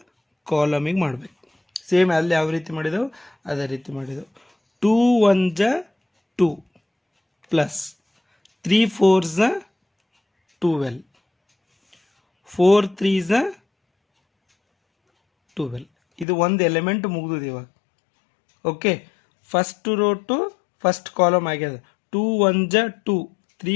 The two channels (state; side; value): drops out; right; at 16.2 s